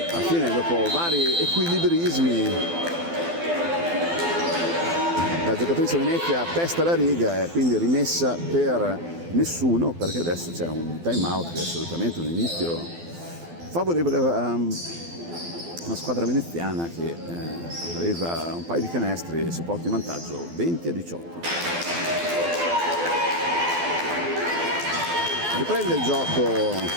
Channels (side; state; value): left; late; 12 ms